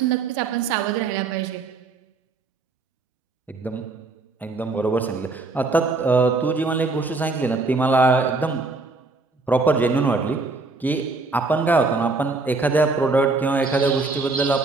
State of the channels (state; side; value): quieter; left; 3.7 dB